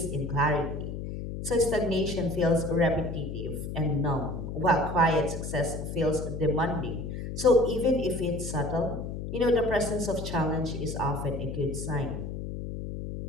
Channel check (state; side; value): noise; left; hum, 6 dB below the sound